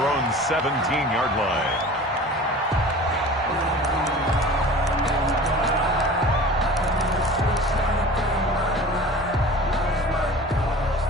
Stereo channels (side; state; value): both; normal; correlation 0.40